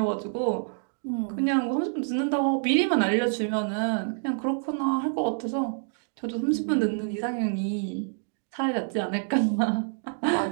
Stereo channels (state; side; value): silent; left; digital silence